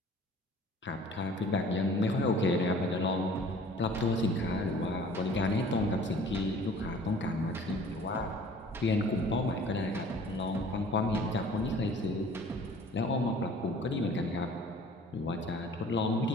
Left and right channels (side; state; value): both; normal; correlation 0.50